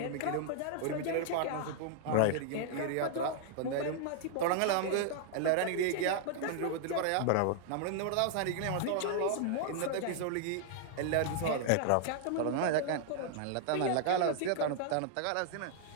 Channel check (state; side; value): different; both; correlation 0.00